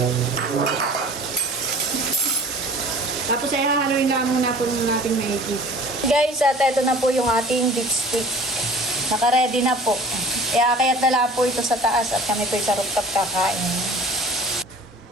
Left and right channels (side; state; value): both; normal; correlation 0.45